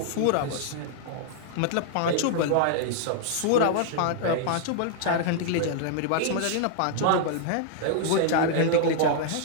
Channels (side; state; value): both; different; correlation -0.01